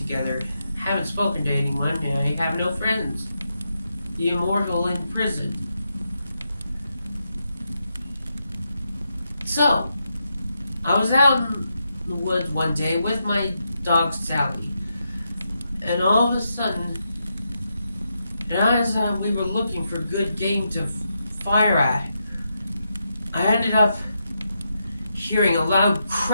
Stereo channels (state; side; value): inverted; both; correlation -0.84